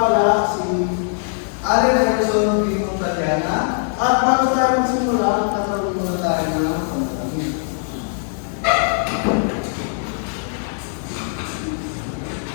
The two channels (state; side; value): silent; right; digital silence